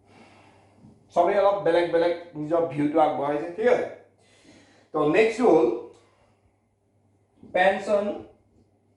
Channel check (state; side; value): identical; both; correlation 1.00